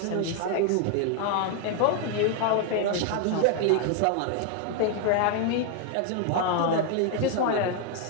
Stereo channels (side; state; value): both; different; correlation 0.01